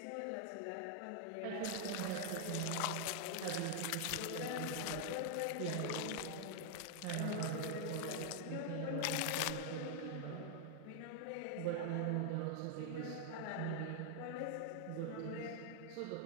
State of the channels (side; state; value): both; different; correlation 0.00